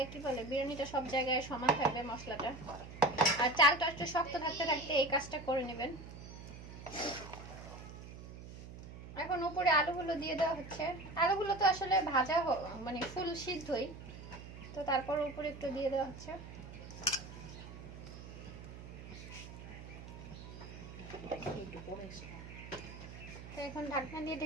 কি বলে বিরিয়ানিটা সব জায়গায় সমান থাকবে মশলাটা। আর চালটা একটু শক্ত থাকতে থাকতে এই কাজটা করে নেবেন। এখন উপরে আলুগুলো দিয়ে দেওয়া হচ্ছে। আলুগুলো তো আসলে ভাজা মানে ফুল সিদ্ধই, তো তারপর উপরে একটু দিয়ে দেওয়া হচ্ছে। তো এখন ঢাকনা দিয়ে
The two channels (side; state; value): right; noise; hum, 13 dB below the sound